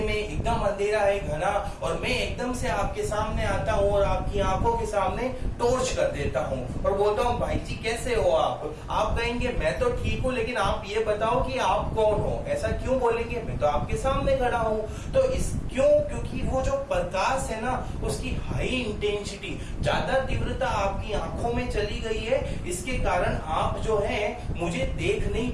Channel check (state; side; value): identical; both; correlation 1.00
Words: में, एकदम अंधेरा है घना, और मैं एकदम से आपके सामने आता हूँ और आपकी आंखों के सामने टॉर्च कर देता हूँ और बोलता हूँ भाई जी कैसे हो आप कहेंगे मैं तो ठीक हूँ, लेकिन आप ये बताओ कि आप कौन हो। ऐसा क्यों बोलेंगे? मैं तो आपके सामने खड़ा हूँ। तो क्योंकि वो जो प्रकाश है ना, उसकी हाई इंटेंसिटी, ज्यादा तीव्रता आपकी आंखों में चली गई है, इसके कारण आप जो है मुझे देख नहीं